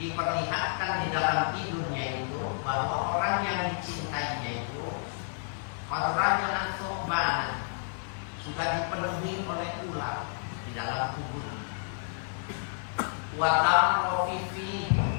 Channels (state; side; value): silent; right; 57 dB below the other